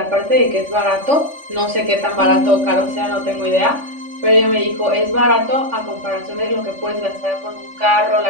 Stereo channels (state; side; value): late; left; 3.4 ms